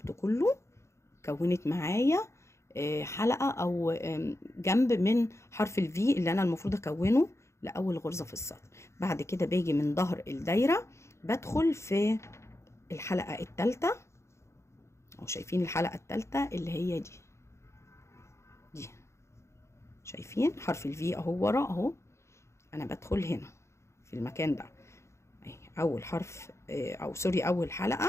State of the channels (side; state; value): right; late; 0.13 ms